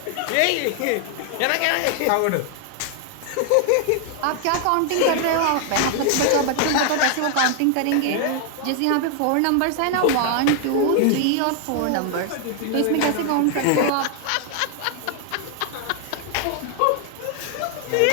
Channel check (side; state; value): both; different; correlation 0.00